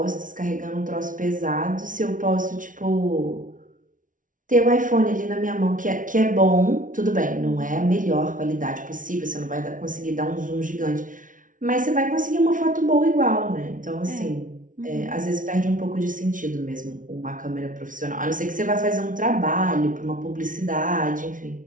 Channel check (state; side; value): late; left; 0.38 ms